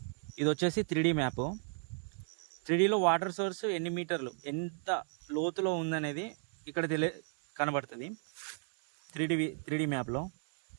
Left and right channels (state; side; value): silent; left; 54 dB below the other